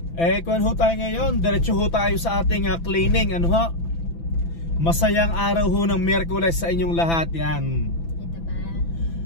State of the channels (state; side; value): late; right; 6.0 ms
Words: Kuwan ho tayo ngayon, diretso ho tayo sa ating cleaning, ano ho? Masayang araw ho ng Miyerkules sa inyong lahat, yan. Ito ba?